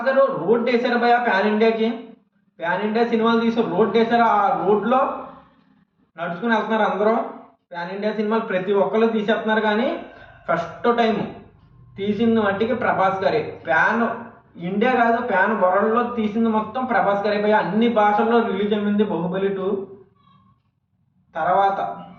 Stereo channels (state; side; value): identical; both; correlation 1.00